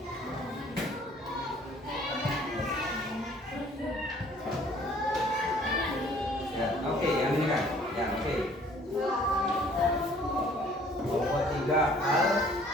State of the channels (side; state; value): both; normal; correlation 0.56